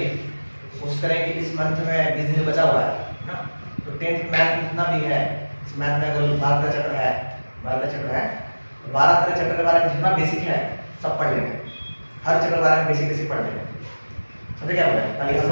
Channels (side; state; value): both; inverted; correlation -1.00